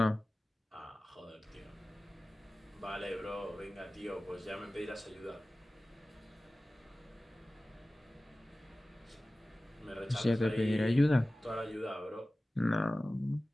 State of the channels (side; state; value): both; normal; correlation 0.97